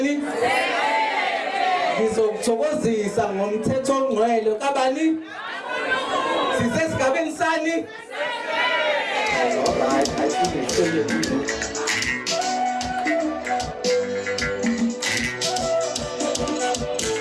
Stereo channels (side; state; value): both; identical; correlation 1.00